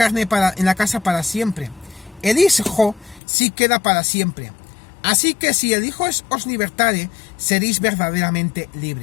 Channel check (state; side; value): drops out; right; at 3.2 s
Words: la casa para siempre. El Hijo sí queda para siempre. Así que si el Hijo os libertare, seréis verdaderamente